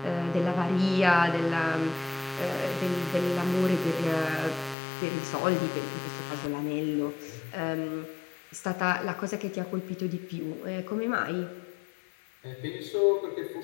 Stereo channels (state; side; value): drops out; right; at 4.8 s